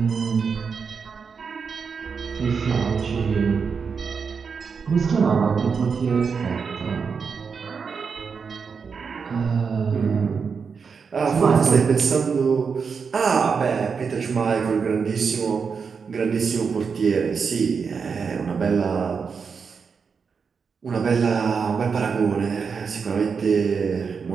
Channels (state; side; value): quieter; left; 5.7 dB